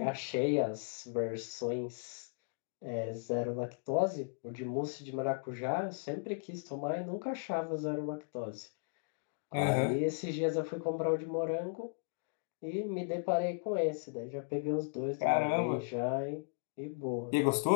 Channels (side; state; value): right; silent; digital silence